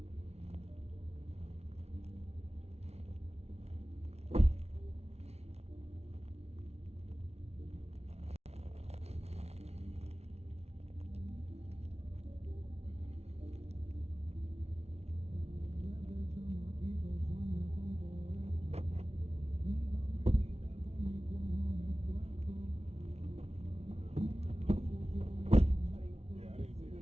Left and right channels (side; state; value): left; late; 0.31 ms